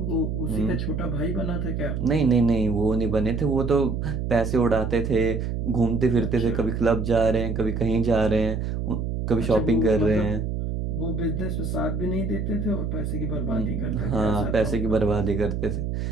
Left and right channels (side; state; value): right; noise; hum, 2 dB below the sound